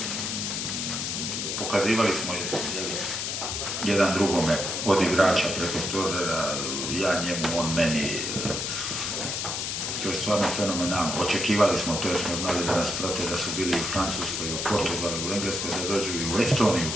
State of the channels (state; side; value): noise; left; hiss, 2 dB below the sound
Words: Pokazivali smo jedan drugome od igrača preko stožera, ja njemu, on meni. To je stvarno fenomenalno. Očekivali smo to jer smo znali da nas prate, da su bili u Francuskoj, u Portugalu, u Engleskoj, da dođu i u Estoniju